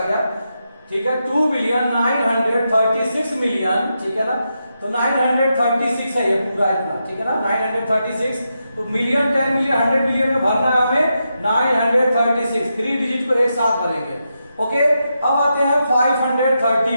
गया। ठीक है। 2 बिलियन 936 मिलियन। ठीक है ना। तो 936 है ये पूरा इतना। ठीक है ना। 936 तो मिलियन 10 मिलियन 100 मिलियन में भरना है हमें 936। 3 डिजिट को एक साथ भरेंगे। ओके। अब आते हैं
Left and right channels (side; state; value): both; inverted; correlation -0.85